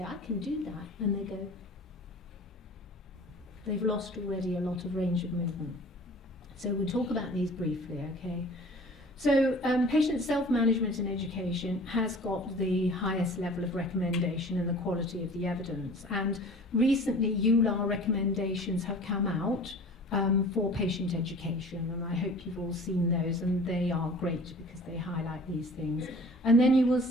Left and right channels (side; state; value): both; normal; correlation 0.44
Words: I can do that. And they go, they've lost already a lot of range of movement. So we'll talk about these briefly, okay? So patient self-management and education has got the highest level of recommendation and the quality of the evidence. And recently, EULAR recommendations have come out for patient education, and I hope you've all seen those, and they are great because they highlight these things. And then you will